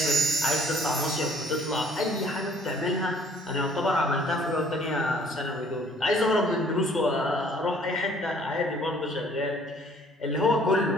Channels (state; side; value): normal; both; correlation 0.58